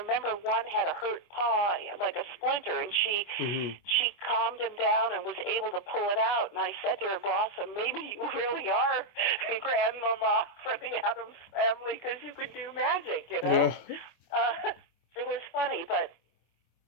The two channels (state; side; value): late; right; 25 ms